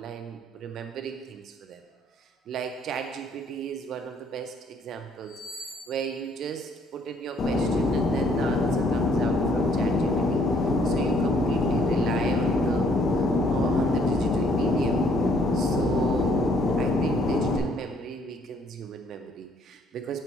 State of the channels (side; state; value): both; normal; correlation 0.64